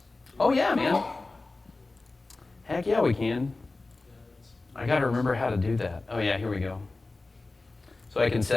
Oh yeah, man. Heck yeah, we can. I gotta remember how to do that. Oh yeah, here we go. So I can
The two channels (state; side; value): quieter; right; 3.4 dB